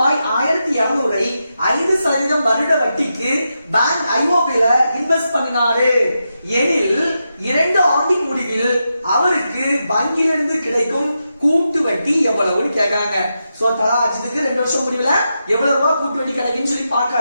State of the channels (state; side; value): inverted; both; correlation -0.87